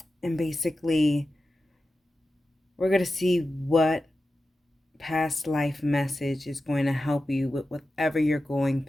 basically, we're going to see what past life message is going to help you with whatever you're going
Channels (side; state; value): both; normal; correlation 0.92